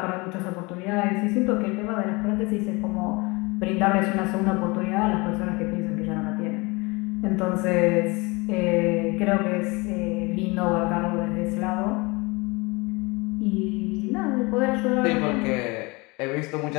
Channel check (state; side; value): quieter; right; 25.9 dB